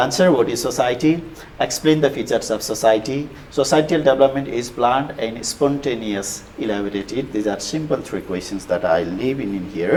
what is society, explain the features of society. Societal development is planned and spontaneous, elaborated. These are simple 3 questions that I leave in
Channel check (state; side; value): identical; both; correlation 1.00